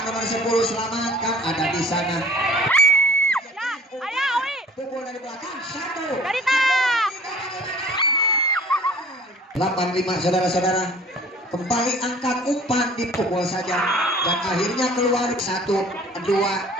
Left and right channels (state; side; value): normal; both; correlation 0.50